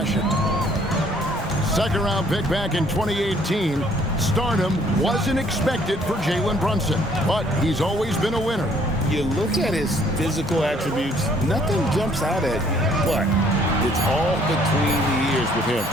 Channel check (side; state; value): both; normal; correlation 0.62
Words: Second round pick back in 2018, stardom wasn't expected for Jalen Brunson, but he's always been a winner. You look at his physical attributes, nothing jumps out at you, but it's all between the ears with him.